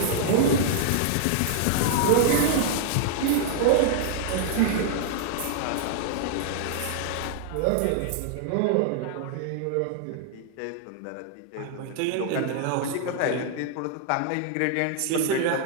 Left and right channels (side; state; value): both; different; correlation 0.00